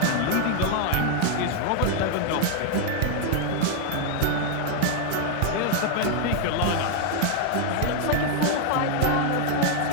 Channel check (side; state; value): both; different; correlation 0.00